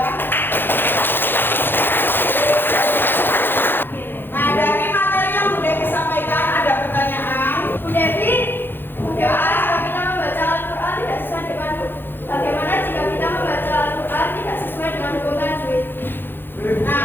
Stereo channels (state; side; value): late; right; 0.10 ms